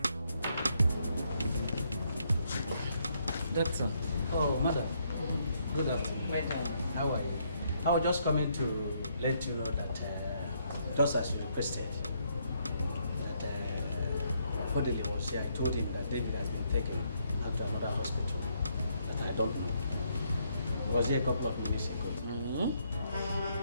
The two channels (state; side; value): inverted; both; correlation -0.73